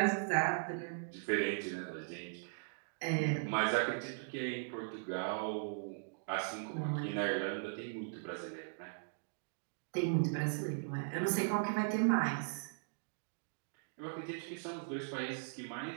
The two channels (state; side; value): silent; left; digital silence